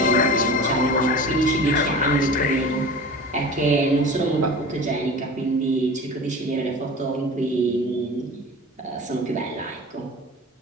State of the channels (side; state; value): both; normal; correlation 0.36